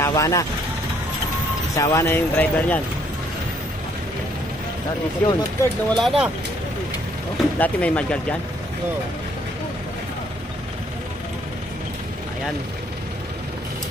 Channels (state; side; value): normal; both; correlation 0.67